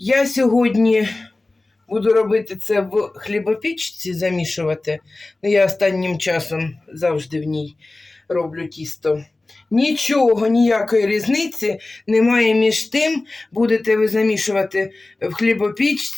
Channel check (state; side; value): quieter; right; 3.0 dB